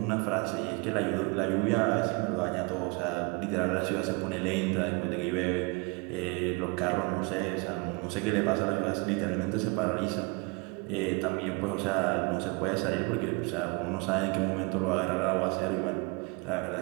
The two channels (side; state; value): left; quieter; 30.1 dB